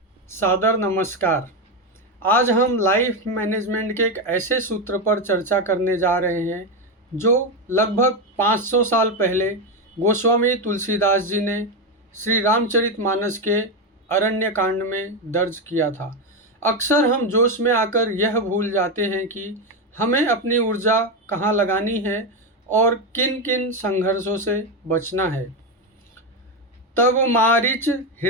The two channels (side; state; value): both; normal; correlation 0.11